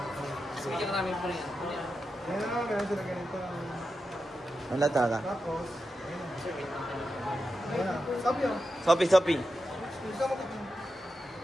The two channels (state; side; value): normal; both; correlation 0.89